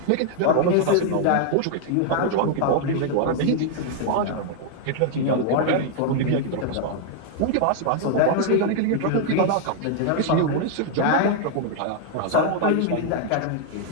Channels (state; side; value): different; both; correlation 0.00